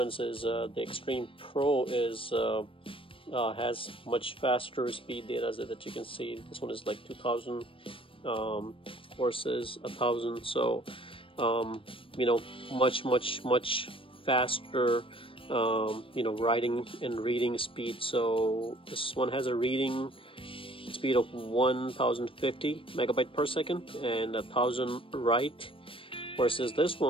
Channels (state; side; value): late; right; 0.26 ms